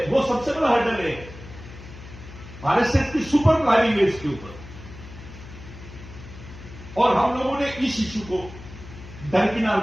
वो सबसे बड़ा हर्डल है। आरएसएस की सुपर प्लानिंग है इसके ऊपर। और हम लोगों ने इस इश्यू को दरकिनार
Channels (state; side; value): noise; left; hum, 16 dB below the sound